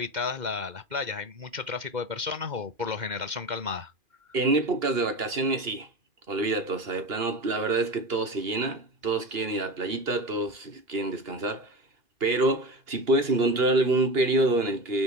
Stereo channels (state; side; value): late; left; 2.8 ms